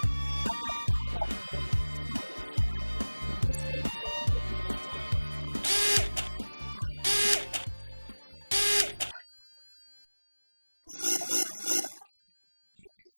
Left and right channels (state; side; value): inverted; both; correlation -1.00